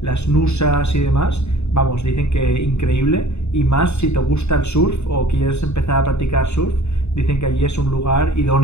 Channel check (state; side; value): late; right; 0.81 ms